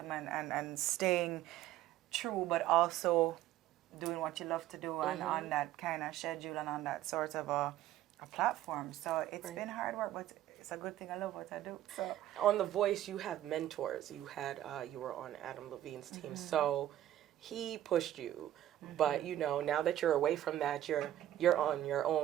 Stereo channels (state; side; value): quieter; left; 13.1 dB